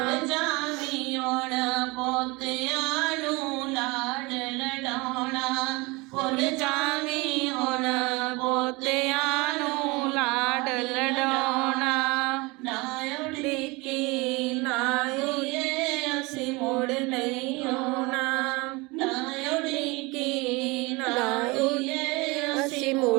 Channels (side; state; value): left; quieter; 25.1 dB